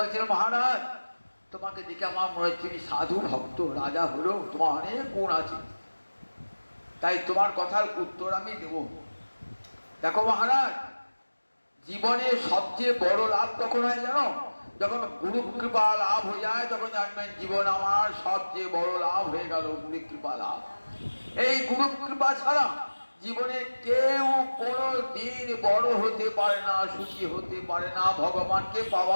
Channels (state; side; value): inverted; both; correlation -1.00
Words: মহারাজ, তোমাকে দেখে আমার মনে হচ্ছে তুমি সাধু ভক্ত, রাজা হলেও তোমার অনেক গুণ আছে, তাই তোমার কথার উত্তর আমি দেব। দেখো মহারাজ, জীবনে সবচেয়ে বড় লাভ তখন হয় জানো, যখন গুরু কৃপা লাভ হয়ে যায়, তখন জানবেন জীবন আমার সবচেয়ে বড় লাভ হয়ে গেল, গুরু কৃপা লাভ। এই গুরু কৃপা ছাড়া জীবনে কেউ কোনো দিন বড় হতে পারে না, সুখী হতে পারে না, ভগবানকে